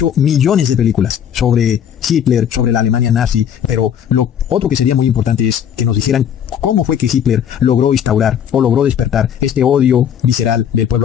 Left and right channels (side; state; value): right; quieter; 8.9 dB